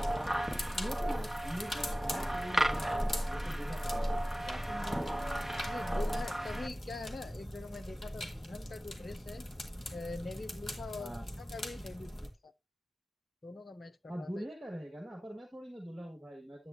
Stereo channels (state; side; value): normal; both; correlation 0.97